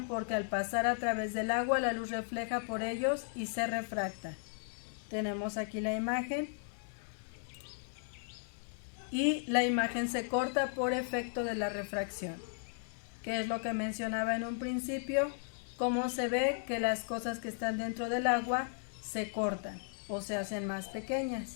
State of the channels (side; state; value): right; silent; digital silence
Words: porque al pasar a través del agua la luz refleja por ellos y se refracta. Tenemos aquí la imagen y la imagen se corta por efecto de la refracción, que es lo que mencionaba en un principio, cómo se ve que las cosas que están dentro del agua se cortan o se hacen más pequeñas.